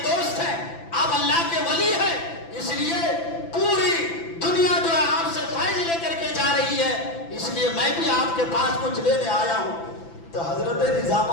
دوست ہیں، آپ اللہ کے ولی ہیں، اس لیے پوری دنیا جو ہے آپ سے فیض لے کر کے جا رہی ہے، اس لیے میں بھی آپ کے پاس کچھ لینے آیا ہوں۔ تو حضرت نظام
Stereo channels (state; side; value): late; right; 5.9 ms